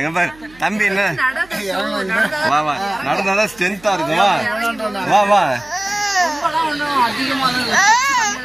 பாரு தம்பி. என்ன வா வா நடந்தாதான் ஸ்ட்ரென்த்தா இருக்கும். வா வா வா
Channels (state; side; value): noise; right; hum, 25 dB below the sound